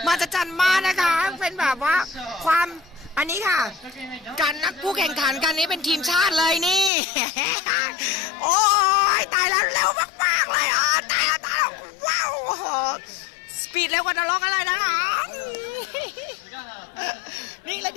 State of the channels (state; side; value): drops out; right; at 6.9 s